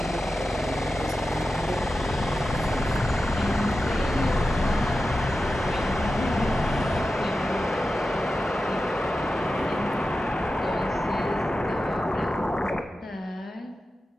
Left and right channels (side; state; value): both; normal; correlation 0.92